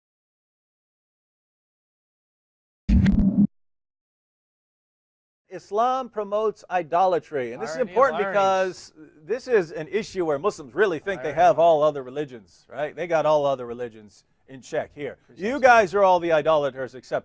Islam promotes idolatry, and this is important because this is an issue where Muslims really think they have all other religions, right? They got all other religions in check here. You guys are all the idolaters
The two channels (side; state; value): both; identical; correlation 1.00